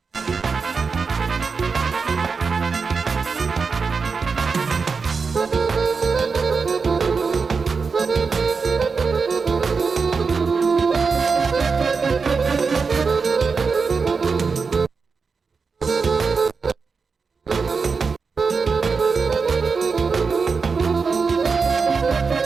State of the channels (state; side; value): quieter; left; 5.0 dB